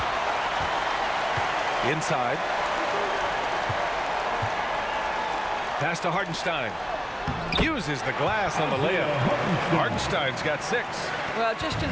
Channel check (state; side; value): identical; both; correlation 1.00